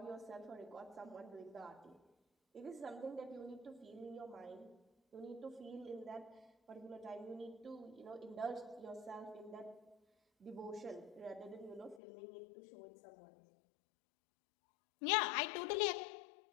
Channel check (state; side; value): drops out; right; at 12.0 s